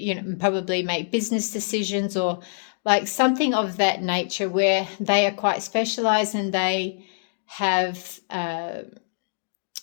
probably make business decisions, or like something of that nature, where they are quite specialized and they have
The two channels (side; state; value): right; silent; digital silence